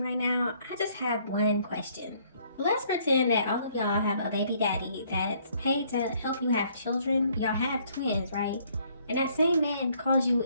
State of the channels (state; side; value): inverted; both; correlation -0.64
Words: right now, I just have one question. Let's pretend that all of y'all have a baby daddy that's paid to help you have children. Y'all have twins, right? And that same man calls you